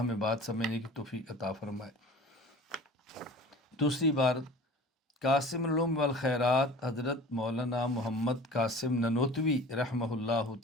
بات سمجھنے کی توفیق عطا فرمائے۔ دوسری بار قاسم العلوم والخیرات حضرت مولانا محمد قاسم ننوتوی رحمہ اللہ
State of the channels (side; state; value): both; normal; correlation 0.41